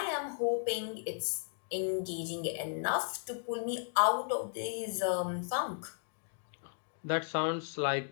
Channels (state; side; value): silent; right; digital silence